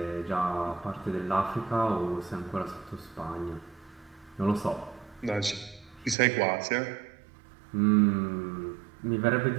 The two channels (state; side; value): drops out; left; at 6.2 s